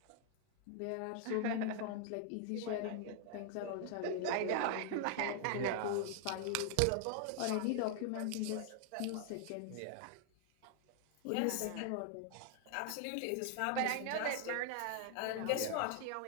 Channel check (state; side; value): different; both; correlation 0.00